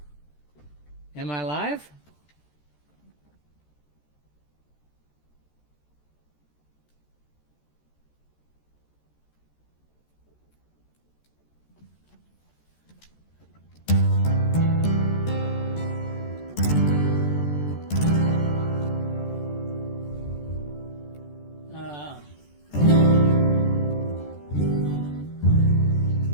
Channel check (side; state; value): right; late; 14 ms